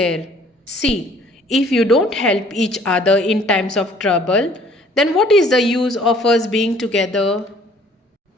See, if you don't help each other in times of trouble, then what is the use of us being together?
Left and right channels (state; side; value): normal; both; correlation 0.57